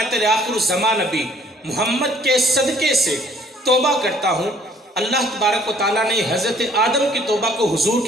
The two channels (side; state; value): both; normal; correlation 0.59